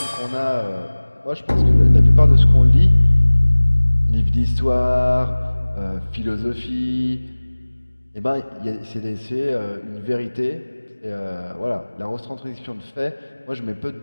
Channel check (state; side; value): inverted; both; correlation -1.00